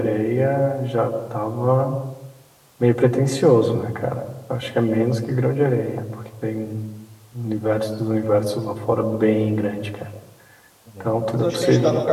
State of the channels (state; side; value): identical; both; correlation 1.00